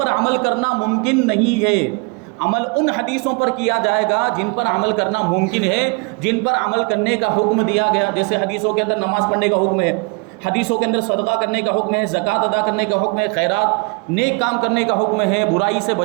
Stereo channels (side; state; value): left; quieter; 32.4 dB